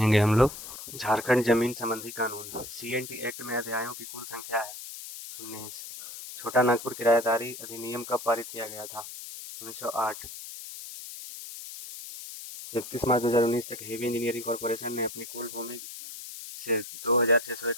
हम लोग। झारखंड जमीन संबंधी कानून। सीएनटी एक्ट में अध्यायों की कुल संख्या है 19। छोटा नागपुर किराएदारी अधिनियम कब पारित किया गया था? 1908। 31 मार्च 2019 तक हेवी इंजीनियरिंग कॉरपोरेशन ने अपनी कुल भूमि से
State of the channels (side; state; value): left; noise; hiss, 11 dB below the sound